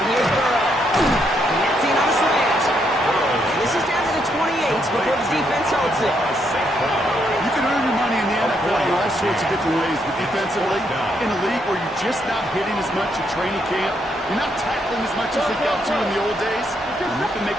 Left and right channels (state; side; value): normal; both; correlation 0.76